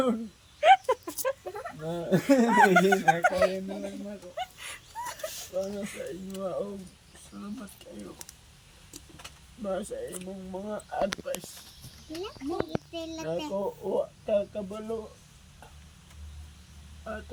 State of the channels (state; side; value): identical; both; correlation 1.00